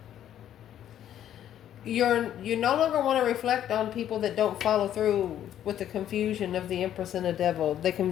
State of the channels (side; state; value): right; quieter; 10.9 dB